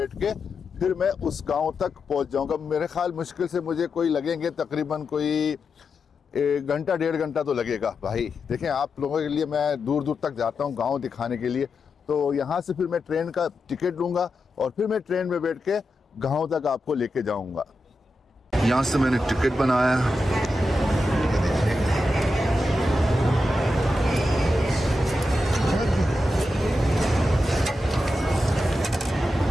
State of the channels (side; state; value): both; normal; correlation 0.88